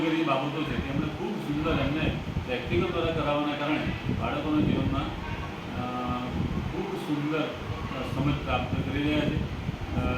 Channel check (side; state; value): both; identical; correlation 1.00